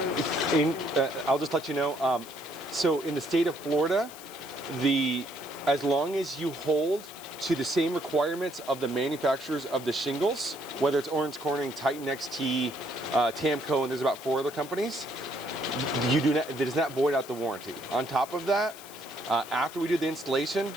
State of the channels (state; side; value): noise; left; hiss, 17 dB below the sound